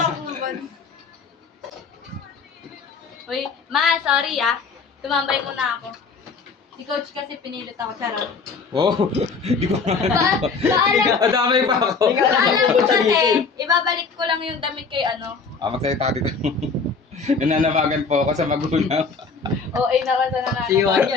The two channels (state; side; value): quieter; right; 4.9 dB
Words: Uy, ma, sorry ah. Tumambay muna ako. Si coach kasi pinilit ako, charot. Wow. Hindi ko Paalam, Adamay pa ako. paalam ko kasi, ibabalik ko lang yung damit kay ano. Magsalita dito. Nananabagan po ako sa magulang. O, ay naman sa nananaw. Si Juan